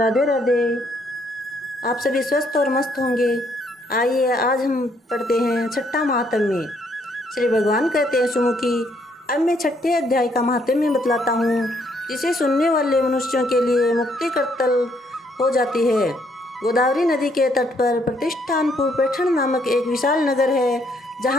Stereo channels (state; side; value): normal; both; correlation 0.70